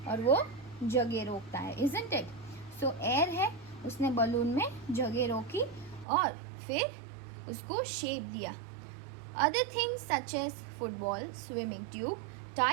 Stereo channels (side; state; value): left; drops out; at 6.1 s